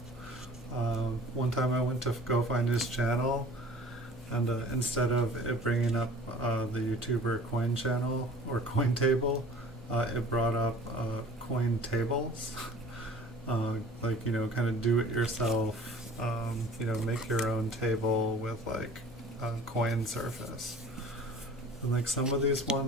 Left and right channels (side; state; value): both; normal; correlation 0.46